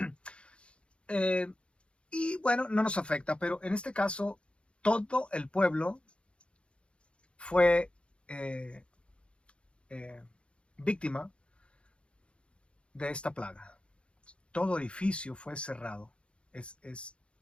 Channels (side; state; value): right; late; 0.058 ms